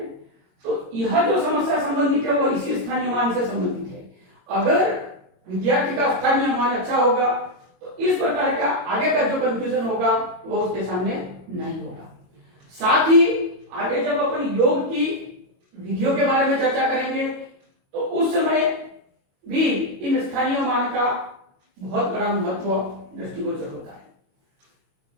तो यह जो समस्या संबंधित है वह इसी स्थानीय मान से संबंधित है। अगर विद्यार्थी का स्थानीय मान अच्छा होगा तो इस प्रकार का आगे का जो कंफ्यूजन होगा वो उसके सामने नहीं होगा। साथ ही आगे जब अपन योग की विधियों के बारे में चर्चा करेंगे तो उस समय भी इन स्थानीय मान का बहुत बड़ा महत्व दृष्टिगोचर होता है।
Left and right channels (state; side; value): late; left; 22 ms